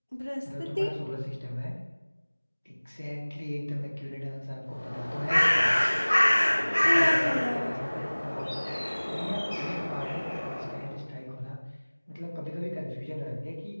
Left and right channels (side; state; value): both; inverted; correlation -1.00